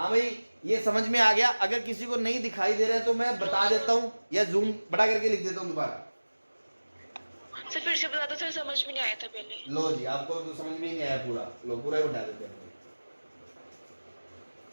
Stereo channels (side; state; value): both; inverted; correlation -1.00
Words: भाई ये समझ में आ गया, अगर किसी को नहीं दिखाई दे रहा है तो मैं बता देता हूं या जूम बड़ा करके लिख देता हूं दोबारा। सर फिर से बता दो सर, समझ में नहीं आया था पहले। लो जी, आपको तो समझ में ही नहीं आया पूरा, लो पूरा ही उठा देते हैं,